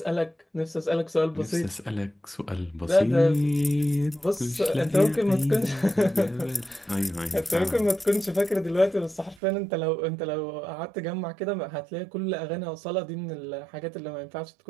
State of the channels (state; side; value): drops out; left; at 9.4 s